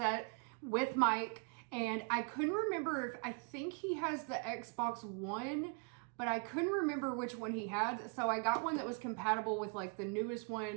with mic. And I couldn't remember if, I think he has the Xbox One, but I couldn't remember which one he had. So I got one that was compatible with like the newest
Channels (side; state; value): left; quieter; 38.0 dB